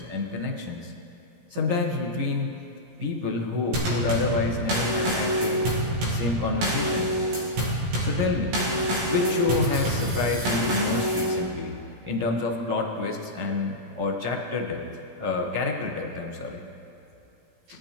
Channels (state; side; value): late; left; 17 ms